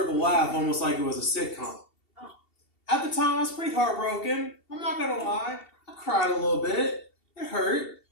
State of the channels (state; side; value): late; right; 2.7 ms